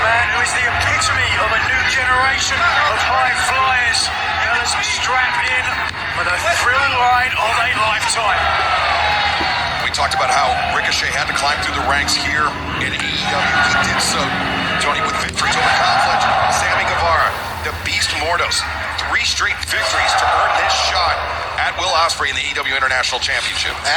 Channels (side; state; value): both; identical; correlation 1.00